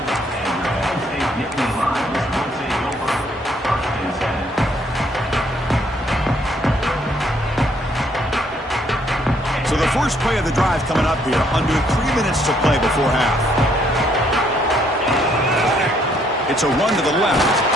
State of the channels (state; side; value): normal; both; correlation 0.68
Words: So the first play of the drive coming up here. Under 3 minutes to play before half. It's a run to the left.